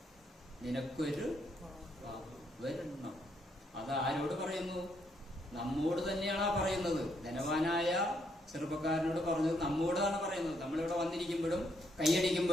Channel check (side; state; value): both; normal; correlation 0.74